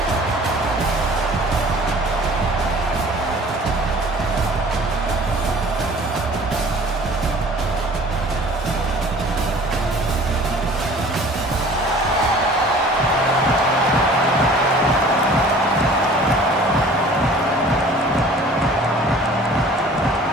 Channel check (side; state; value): both; normal; correlation 0.48